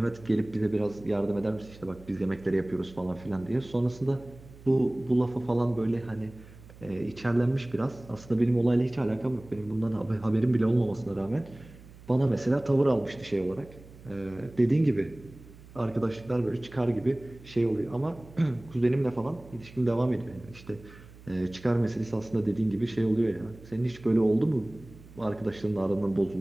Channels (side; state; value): right; noise; hum, 20 dB below the sound